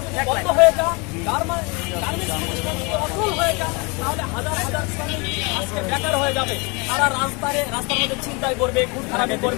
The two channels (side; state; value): right; quieter; 29.0 dB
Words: বেকার হয়ে যাবে, তারা রাস্তার মধ্যে চিন্তায় করবে, খুব খারাপে